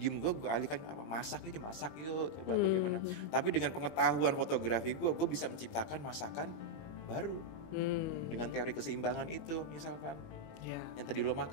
gue alihkan apa? Masak yuk, coba bagaimana. Tapi dengan pengetahuan fotografi gue bisa menciptakan masakan baru dengan teori keseimbangan itu misalkan. Yang tadi lo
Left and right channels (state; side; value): late; right; 20 ms